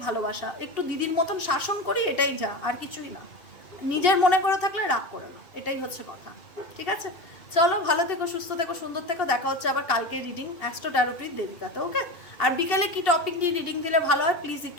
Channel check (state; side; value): late; right; 2.7 ms